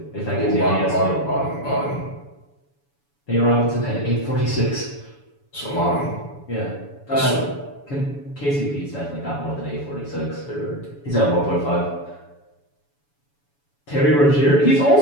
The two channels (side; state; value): right; late; 7.0 ms